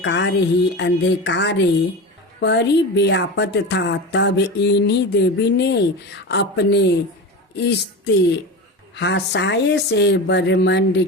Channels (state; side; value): normal; both; correlation 0.26